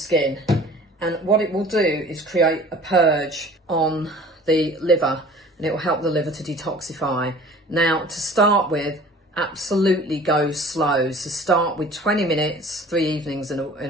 And what it will do is create a purge on the liver, and it will help the liver to detoxify. Now to start with, absolutely go slow. So start with 20 minutes, 3 evenings in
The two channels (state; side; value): normal; both; correlation 0.46